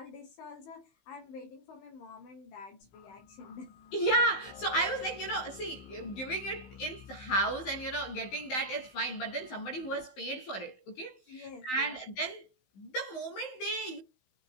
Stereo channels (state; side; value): late; right; 16 ms